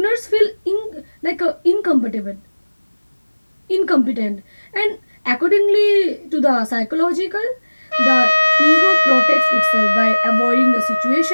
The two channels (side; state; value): both; inverted; correlation -1.00